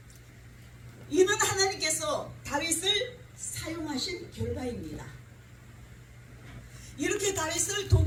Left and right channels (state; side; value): identical; both; correlation 1.00